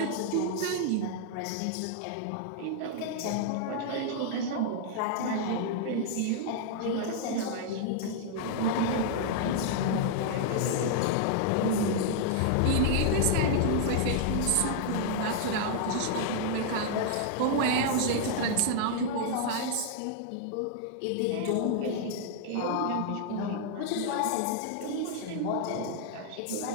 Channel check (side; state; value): both; different; correlation -0.01